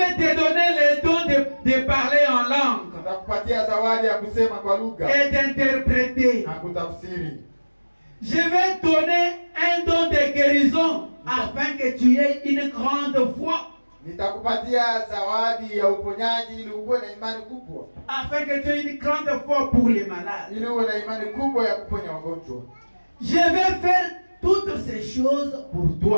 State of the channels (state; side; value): inverted; both; correlation -1.00